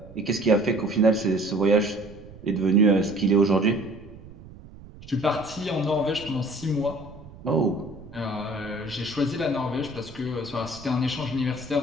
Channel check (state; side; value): noise; right; rumble, 18 dB below the sound